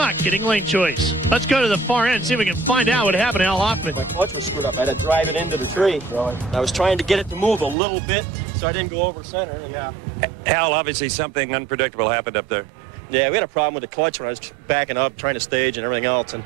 getting lane choice. Let's go to the far end and see if we can find out what happened to Al Hoffman. My clutch was screwed up. I had to drive it into the tree. I was trying to get it to move a little bit so I didn't go over center. Yeah. Al, obviously something unpredictable happened up there. Yeah, we had a problem with the clutch when I was backing up, trying to stage and everything else. And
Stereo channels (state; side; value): drops out; left; at 7.8 s